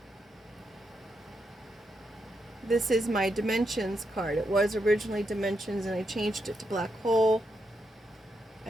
This is my dimensions card. It was originally dimensions and I changed it to black hole.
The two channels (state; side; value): normal; both; correlation 0.82